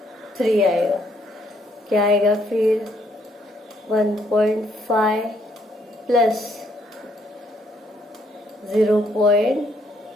आएगा, क्या आएगा फिर 1.5 प्लस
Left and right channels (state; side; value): normal; both; correlation 0.70